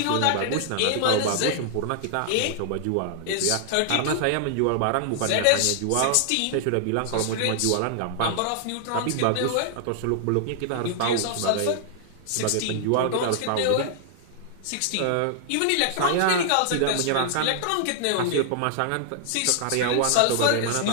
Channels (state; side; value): different; both; correlation -0.01